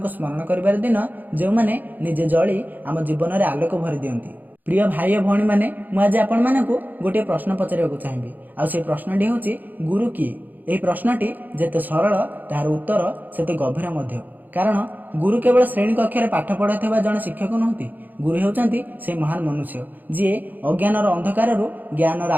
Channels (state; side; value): late; left; 0.085 ms